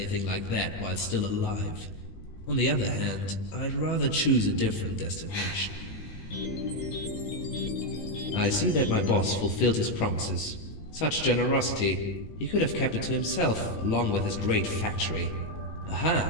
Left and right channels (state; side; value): late; right; 19 ms